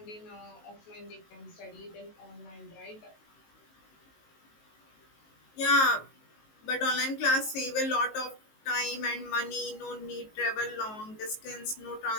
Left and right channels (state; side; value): late; right; 19 ms